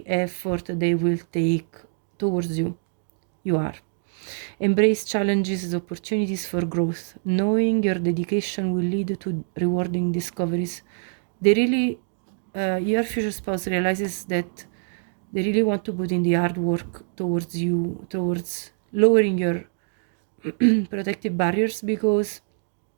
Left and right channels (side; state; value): left; silent; digital silence